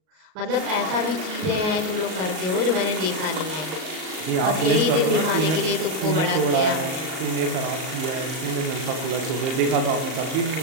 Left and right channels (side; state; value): left; late; 38 ms